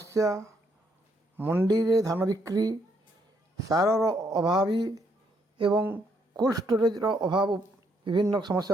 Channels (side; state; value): both; normal; correlation 0.73